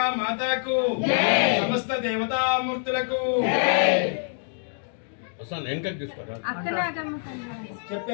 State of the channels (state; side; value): silent; right; 61 dB below the other